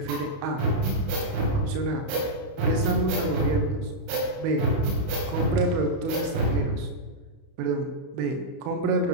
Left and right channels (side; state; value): left; late; 31 ms